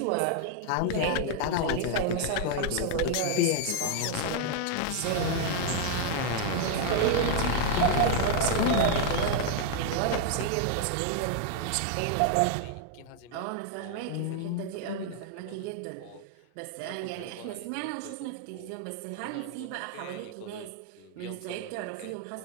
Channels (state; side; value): different; both; correlation 0.00